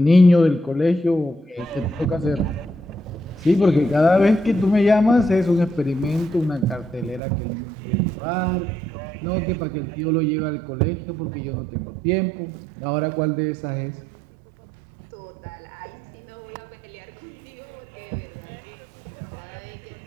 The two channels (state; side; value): drops out; left; at 7.2 s